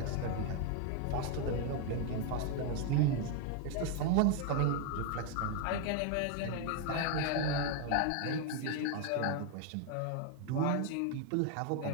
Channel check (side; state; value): both; different; correlation 0.01